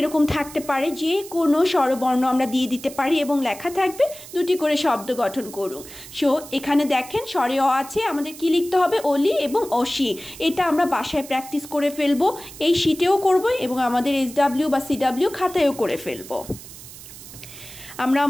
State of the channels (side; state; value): right; noise; hiss, 16 dB below the sound